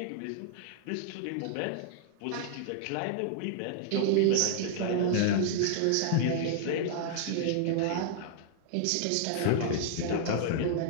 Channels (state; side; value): different; both; correlation -0.01